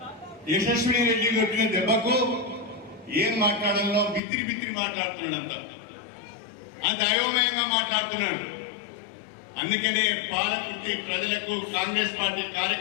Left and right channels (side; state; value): right; drops out; at 4.2 s